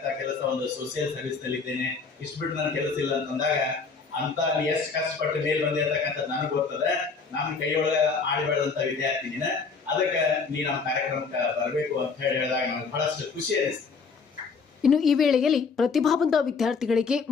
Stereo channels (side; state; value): right; quieter; 4.9 dB